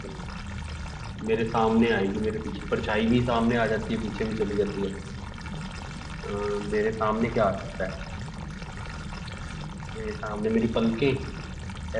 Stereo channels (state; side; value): identical; both; correlation 1.00